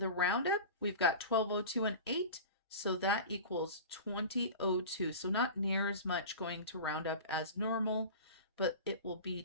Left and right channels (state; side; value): inverted; both; correlation -0.33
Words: roundup, we've got 1202 and 8, so that equals 2002. So not near as much going to roundup as normal, but it will be